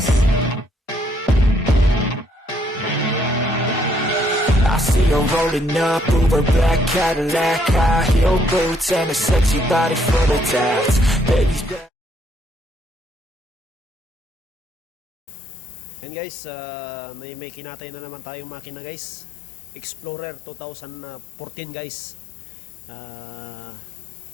I see her rolling up, Uber black Cadillac, high heel boots and a sexy body full of tats. Baby's back. Yan guys, may kinatay na naman tayong makina guys. Explorer 2014 guys.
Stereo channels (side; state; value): right; drops out; at 11.9 s